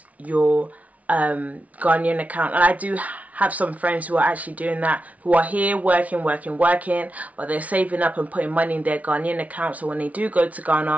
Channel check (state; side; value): late; left; 0.069 ms